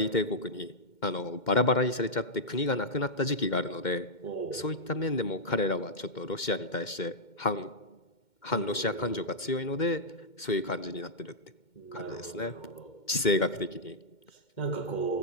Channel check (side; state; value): right; late; 2.1 ms